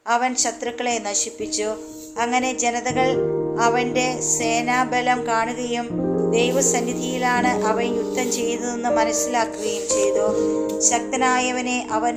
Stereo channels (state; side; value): identical; both; correlation 1.00